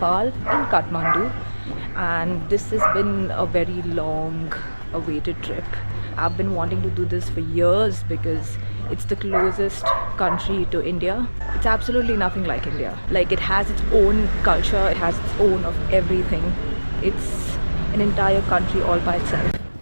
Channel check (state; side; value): inverted; both; correlation -1.00